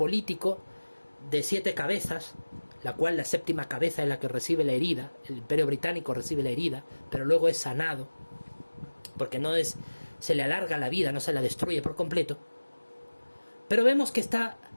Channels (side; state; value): both; inverted; correlation -1.00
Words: de 7 cabezas, la cual la séptima cabeza es la que recibe la herida, el Imperio Británico recibe la herida, pero luego es sanado, porque se le alarga la vida, no se la destruye por completo, pero vemos que está